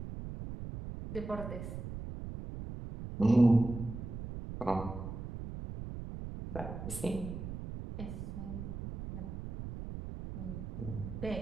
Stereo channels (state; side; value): noise; right; rumble, 7 dB below the sound